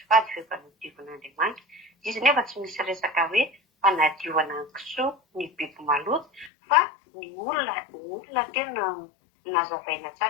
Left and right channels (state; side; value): drops out; right; at 6.5 s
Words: fady fa efa nadiovan'Andriamanitra. Izy nefa tsy misy resaka hoe fanadiovana ny kisoa ny biby maloto fa ny olona tena nazavaina